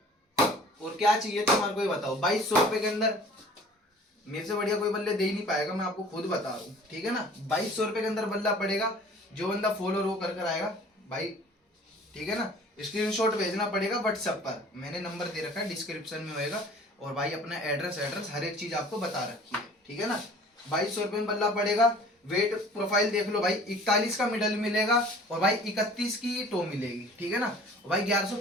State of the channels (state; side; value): normal; both; correlation 0.48